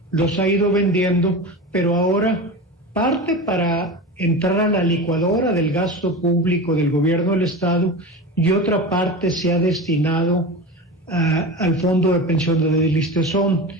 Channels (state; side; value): normal; both; correlation 0.27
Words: los ha ido vendiendo, pero ahora parte para entrar a la licuadora del gasto público del gobierno del Estado y otra parte se ha destinado al Fondo de Pensiones del Listezón.